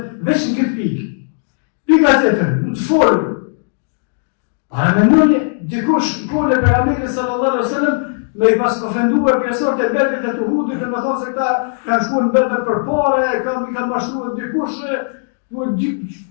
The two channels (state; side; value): silent; right; digital silence